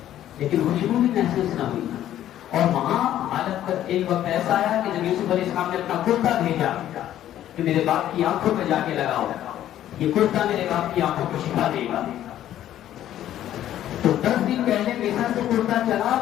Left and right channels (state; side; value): quieter; right; 12.1 dB